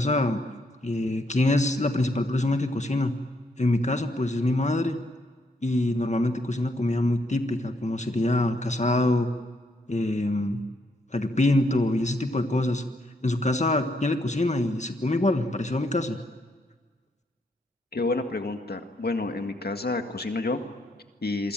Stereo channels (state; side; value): normal; both; correlation 0.74